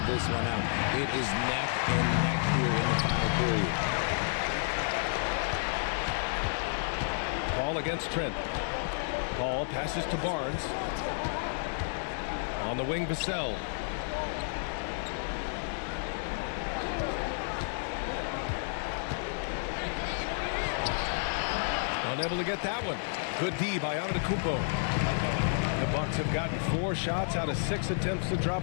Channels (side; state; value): right; silent; 57 dB below the other